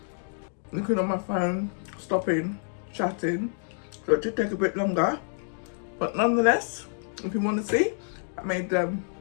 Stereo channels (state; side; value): silent; right; digital silence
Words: looking on my phone, stopping, chatting, so it did take a bit longer. But nonetheless, if you want to see, I made